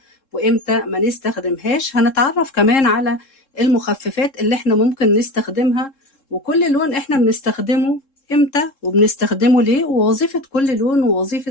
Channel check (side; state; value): right; late; 3.7 ms